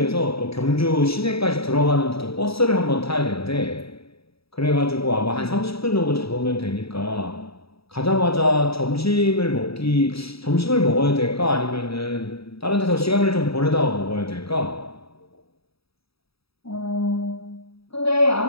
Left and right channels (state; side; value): late; right; 0.77 ms